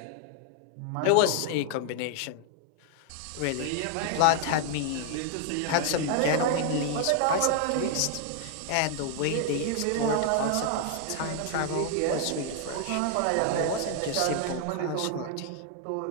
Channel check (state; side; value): different; both; correlation 0.00